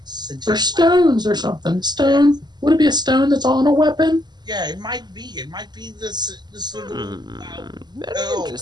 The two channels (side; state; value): left; late; 0.21 ms